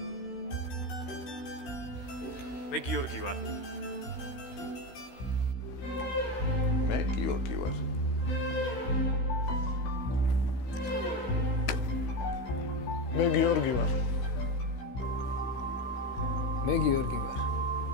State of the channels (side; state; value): right; late; 16 ms